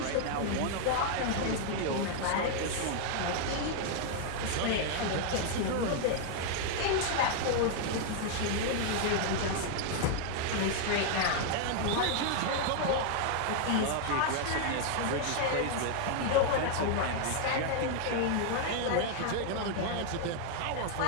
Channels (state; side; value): different; both; correlation 0.00